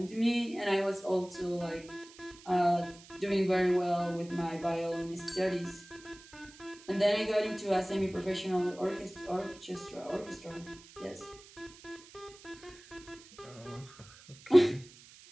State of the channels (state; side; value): noise; right; hiss, 21 dB below the sound